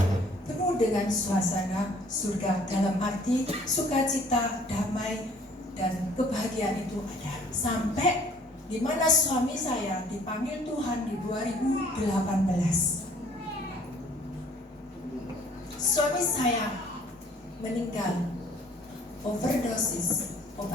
penuh dengan suasana surga, dalam arti sukacita, damai, dan kebahagiaan itu ada. Sampai di mana suami saya dipanggil Tuhan di 2018. Suami saya meninggal overdosis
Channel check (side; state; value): both; normal; correlation 0.57